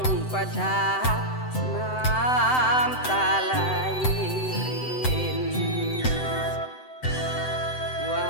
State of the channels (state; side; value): late; right; 7.9 ms